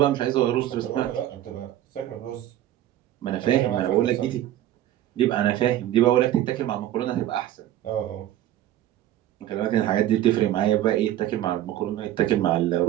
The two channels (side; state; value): left; quieter; 12.8 dB